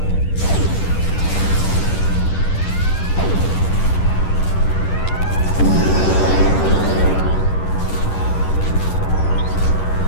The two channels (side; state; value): right; late; 10 ms